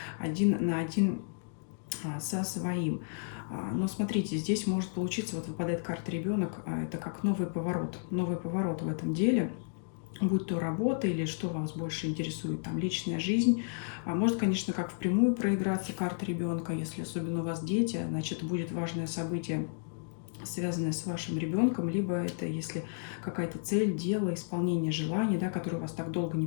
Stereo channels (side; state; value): right; silent; digital silence